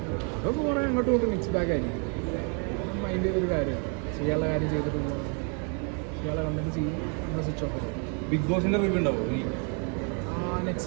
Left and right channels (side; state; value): left; quieter; 38.9 dB